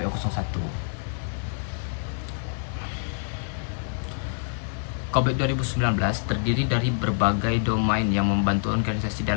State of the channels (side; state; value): right; silent; digital silence